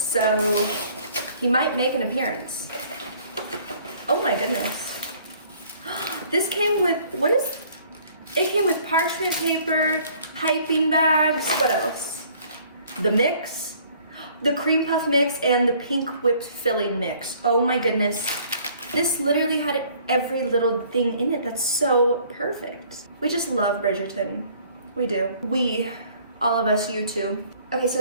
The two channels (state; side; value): inverted; both; correlation -0.57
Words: he might make an appearance. Oh my goodness. This came with, it came with parchment paper, piping bags, what else? The mix, the cream puff mix, and the pink whipped filling mix. Oh my goodness. This literally had every little thing in it. That's so perfect. We just love Bridgerton. We do. We, all of us, you too. Okay, so